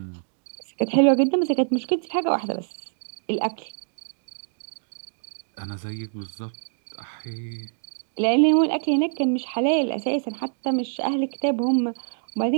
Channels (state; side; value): silent; left; digital silence